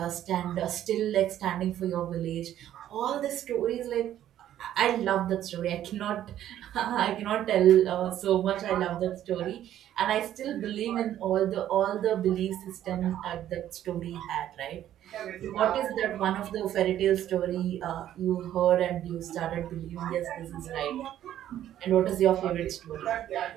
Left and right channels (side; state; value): left; quieter; 11.7 dB